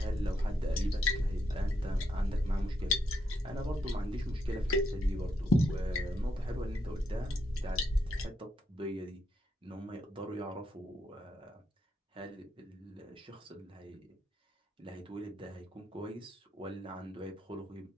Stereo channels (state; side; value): normal; both; correlation 0.79